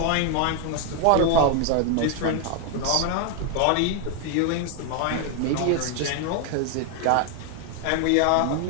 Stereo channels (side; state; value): both; different; correlation 0.01